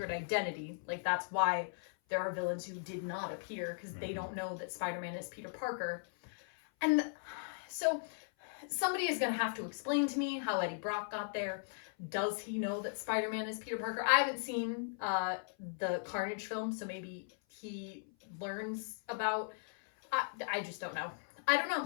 identity. Like, that's why there are villains who did not appear, because they don't know that Spider-Man is Peter Parker. And so somebody is going to have to explain to me how Eddie Brock got there. Does he know that Spider-Man is Peter Parker? I haven't seen the Carnage film, so maybe he learns about... I just don't know. I don't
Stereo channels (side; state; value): right; silent; 53 dB below the other